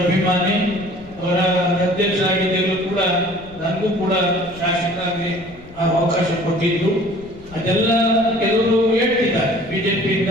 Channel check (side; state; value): left; noise; rumble, 22 dB below the sound